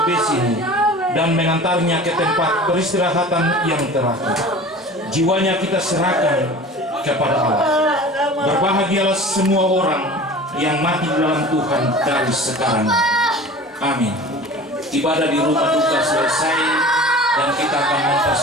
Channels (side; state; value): both; normal; correlation 0.40